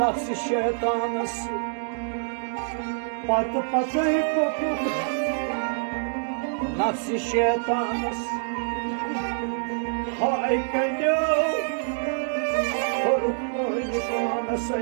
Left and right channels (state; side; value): silent; left; digital silence